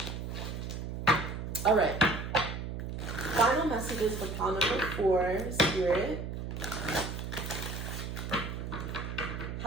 All right. Final messages for pile number 4, Spirit.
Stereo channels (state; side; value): noise; right; hum, 5 dB below the sound